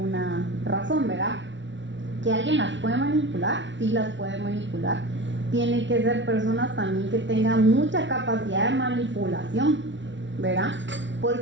razón, ¿verdad? ¿Que alguien las puede manipular? Sí, las puede manipular. Tienen que ser personas también que tengan mucha capacidad de manipulación, ¿verdad?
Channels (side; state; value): left; late; 0.54 ms